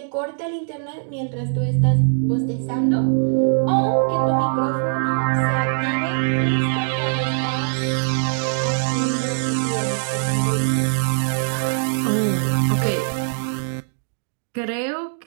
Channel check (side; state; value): left; silent; digital silence